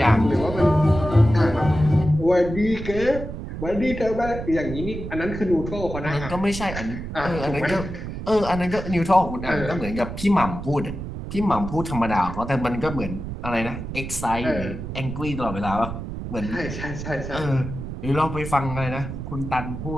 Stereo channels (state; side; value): noise; right; rumble, 8 dB below the sound